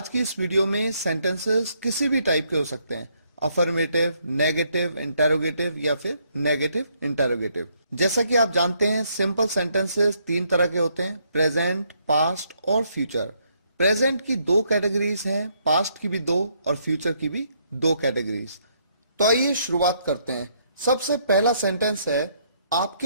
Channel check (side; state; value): both; inverted; correlation -0.72